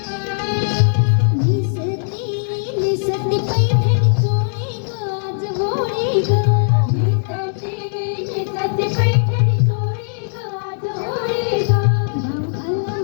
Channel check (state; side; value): silent; right; 66 dB below the other